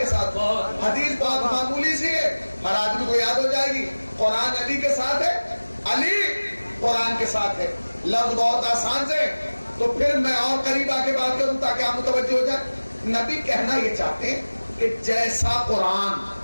ساتھ ہوں۔ حدیث بات معمولی سی ہے، ہر آدمی کو یاد ہو جائے گی، قرآن علی کے ساتھ ہے، علی قرآن کے ساتھ ہے۔ لفظ بہت آسان سے، تو پھر میں اور قریب آ کے بات کروں تاکہ آپ متوجہ ہو جائیں۔ نبی کہنا یہ چاہتے ہیں کہ جیسا قرآن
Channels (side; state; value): both; inverted; correlation -1.00